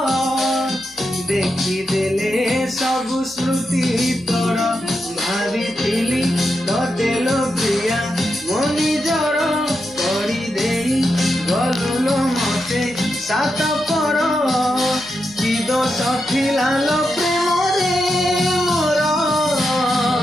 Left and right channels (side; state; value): left; noise; hum, 27 dB below the sound